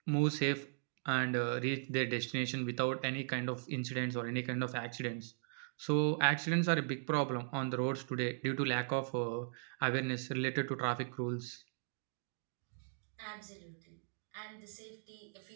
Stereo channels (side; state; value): left; silent; digital silence